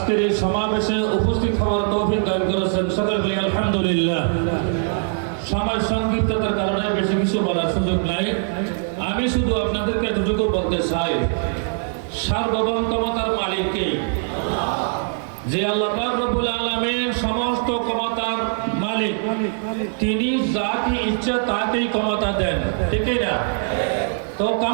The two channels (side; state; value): left; silent; digital silence